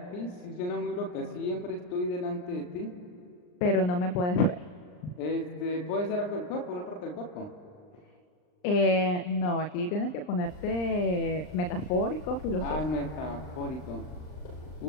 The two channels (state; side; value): late; right; 39 ms